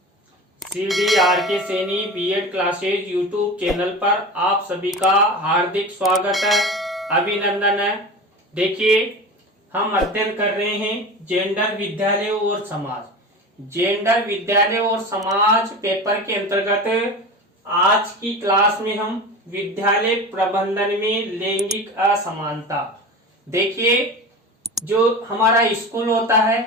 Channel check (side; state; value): both; normal; correlation 0.31